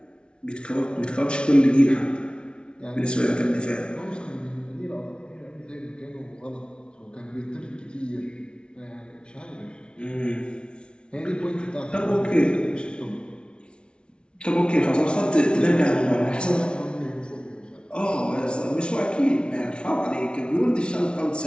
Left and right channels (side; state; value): right; late; 0.057 ms